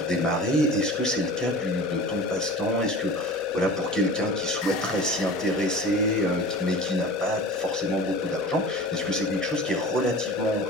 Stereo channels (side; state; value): right; noise; hum, 26 dB below the sound